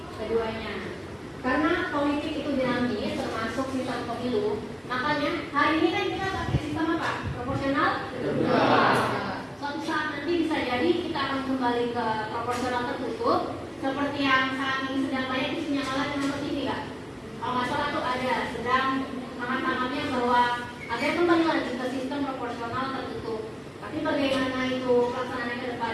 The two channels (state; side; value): identical; both; correlation 1.00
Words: keduanya. Karena politik itu dinamis, termasuk sistem pemilu, makanya hari ini kan kita pakai sistem apa? Proporsional? Suatu saat nanti bisa jadi kita akan kembali ke proporsional tertutup, seperti yang saat ini sedang banyak isunya kalah dengan TV kan? Kalau nggak salah tuh ada sedang hangat-hangatnya bahwa ada yang kembali lagi ke sistem proporsional tertutup. Tapi bagaimana itu pelaksanaannya ke